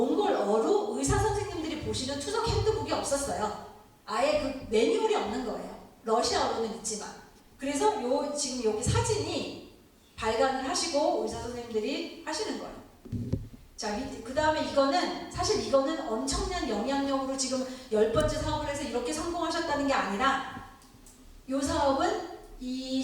의사 선생님들이 보시는 투석 핸드북이 없었어요. 아예 그 매뉴얼이 없는 거예요. 러시아어로는 있지만. 그래서 지금 여기 사진이 발간을 하시고 의사 선생님들이 하시는 거예요. 자, 그 다음에 사실 이거는 엄청난 영향력으로 지금 10번째 사업을 해서 이렇게 성공하셨다는 게 아니라, 이 사업은 이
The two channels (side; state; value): both; identical; correlation 1.00